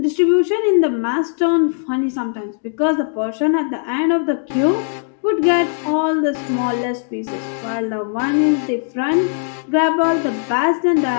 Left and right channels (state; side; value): silent; right; digital silence